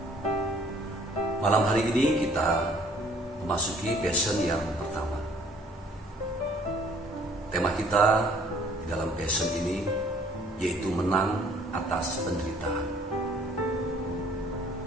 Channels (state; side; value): normal; both; correlation 0.57